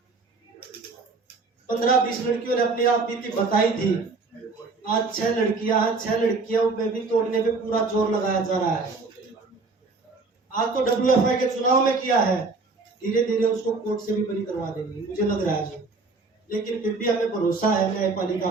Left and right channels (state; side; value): quieter; left; 3.9 dB